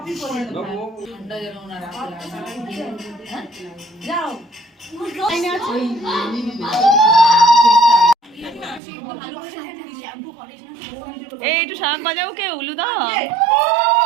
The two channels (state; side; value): drops out; left; at 8.8 s